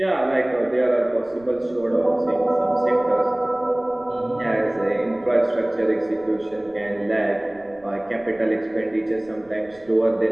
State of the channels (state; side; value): noise; right; rumble, 28 dB below the sound